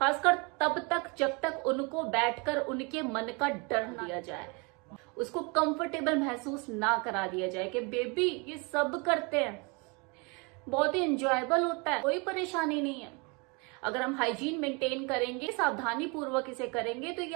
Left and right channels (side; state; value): left; quieter; 30.6 dB